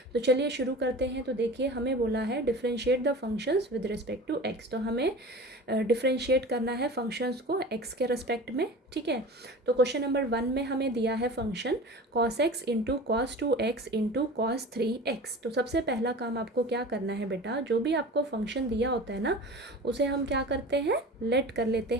तो चलिए शुरू करते हैं। तो देखिए हमें बोला है differentiate the functions with respect to x. तो हमें डिफरेंशिएट करना है फंक्शंस को एक्स के रिस्पेक्ट में। ठीक है, तो क्वेश्चन नंबर 1 में हमें दिया है function cos x into cos 2x into cos 3x। तो सबसे पहला काम आपको क्या करना है बेटा, जो भी आपको फंक्शन दिया होता है ना उसे हम क्या करते हैं, लेट कर लेते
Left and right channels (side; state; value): both; normal; correlation 0.36